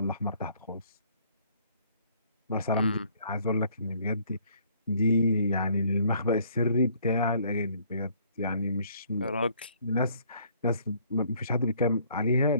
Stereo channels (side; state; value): both; inverted; correlation -0.61